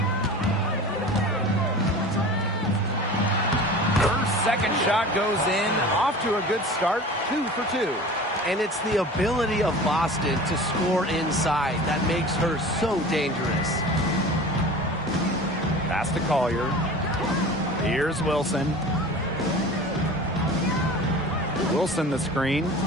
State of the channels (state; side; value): normal; both; correlation 0.38